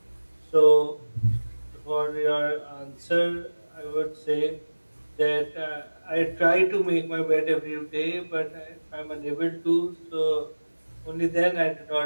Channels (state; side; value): inverted; both; correlation -1.00